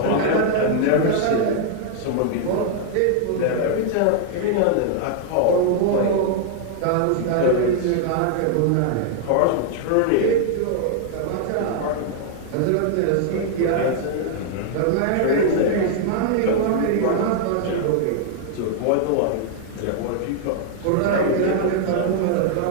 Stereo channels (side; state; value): both; different; correlation -0.01